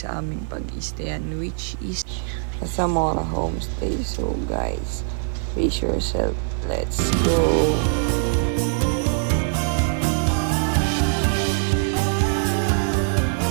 aming pag-stayan, which is sa Zamora Homestay. So guys, brace yourself. Let's go!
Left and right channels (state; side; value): silent; left; 58 dB below the other